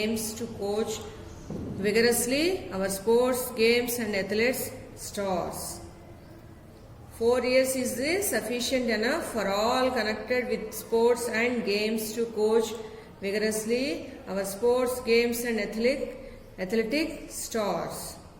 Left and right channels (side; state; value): both; identical; correlation 1.00